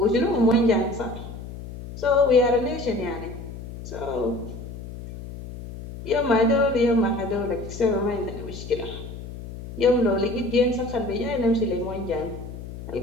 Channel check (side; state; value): left; noise; hum, 11 dB below the sound